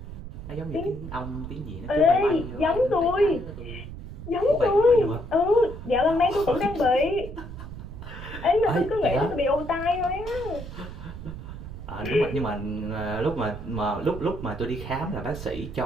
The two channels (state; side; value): noise; right; rumble, 11 dB below the sound